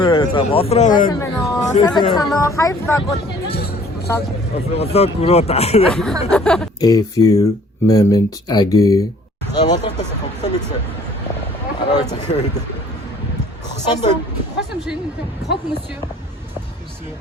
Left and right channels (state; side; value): normal; both; correlation 0.55